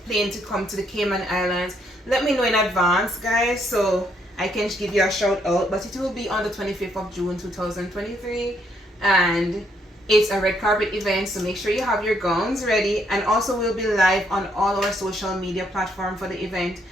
plane to come to the Cayman Islands, let me know in advance, guys, so I can give you a shout out, but it will be on the 25th of June 2023, and it's a red carpet event, so make sure you have your gowns ready. And also we'll be live on all our social media platforms for the event,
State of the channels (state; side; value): normal; both; correlation 0.72